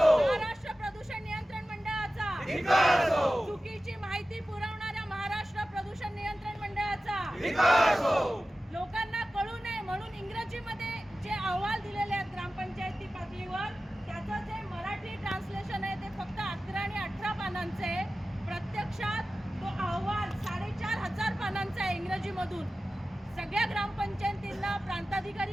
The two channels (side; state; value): both; normal; correlation 0.95